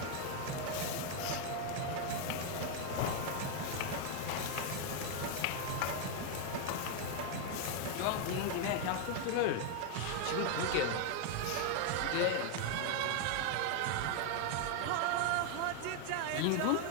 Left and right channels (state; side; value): different; both; correlation 0.00